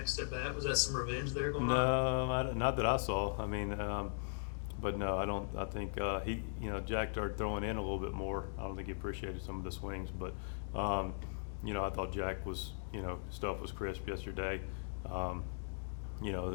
at bat? Was that some revenge there going on? No, not that I saw. I mean, but no, I don't. I think he, Jack started throwing in a little bit more. I don't think he appreciated some of the swings, but I thought Jack was, stuff was crisp yesterday.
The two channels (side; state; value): right; silent; digital silence